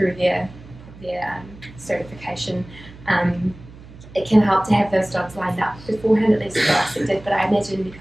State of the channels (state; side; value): noise; right; hum, 19 dB below the sound